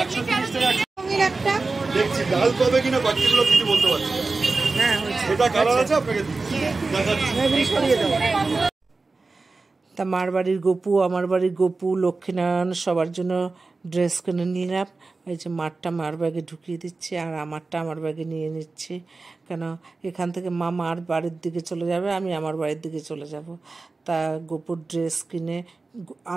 ডাল পাবে কিনা বাকিগুলো কিছু বলতে পারছি না। এটা কালার আছে, আপনাকে তা মার বাড়ির গপু, আমার বাড়ির গপু, লক্ষ্মীনারায়ণ সবার জন্য ড্রেস কিনে নিলাম। এই যে মারটা মার ব্যাগে ঢুকিয়ে দিচ্ছি আর আমারটা আমার ব্যাগে নিয়ে নিচ্ছি, কেন এখান থেকে মা মার বাড়ির দিকে চলে যাবে, আমি আমার বাড়ির দিকে চলে যাব। তা গপুর ড্রেস কিনে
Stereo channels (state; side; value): quieter; left; 3.8 dB